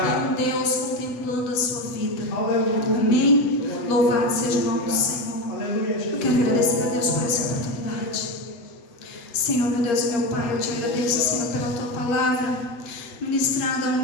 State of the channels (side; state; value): right; late; 8.1 ms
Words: um Deus contemplando a sua vida. Amém? Louvado seja o nome do Senhor. Eu quero agradecer a Deus por essa oportunidade. Senhor, meu Deus e meu Pai, eu te agradeço, Senhor, pela tua palavra ministrada ao